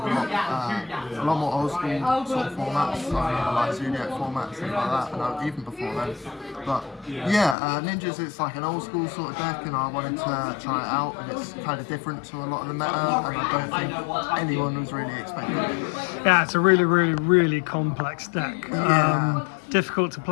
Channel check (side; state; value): right; drops out; at 7.6 s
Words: a lot more old school sort of formats, like Zodiac formats and like that, and even before then. But yeah, Ninjas, it's like an old school sort of deck, and I wanted to try it out, and it's kind of different to a lot of the meta, and I don't think anyone was really expecting it. Yeah, it's a really complex deck. Yeah. Difficult to